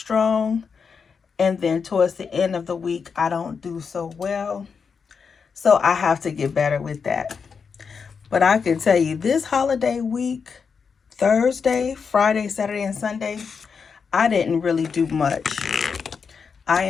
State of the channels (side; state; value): right; quieter; 5.8 dB